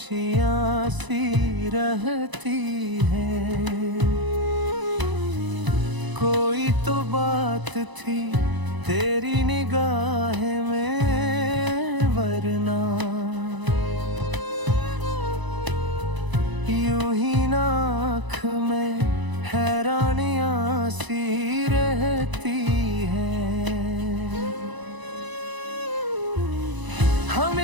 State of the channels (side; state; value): left; late; 1.0 ms